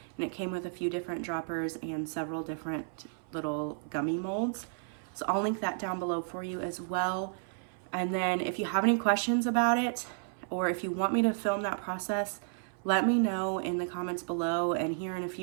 and it came with a few different droppers and several different little gummy molds. So I'll link that down below for you as well. And then if you have any questions about it, or if you want me to film that process, let me know in the comments below. And here in a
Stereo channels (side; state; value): left; silent; 56 dB below the other